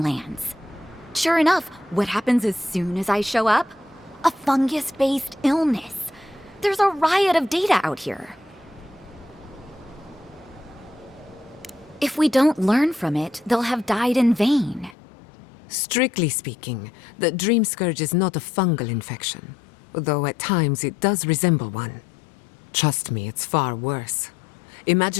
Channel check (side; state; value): right; drops out; at 15.0 s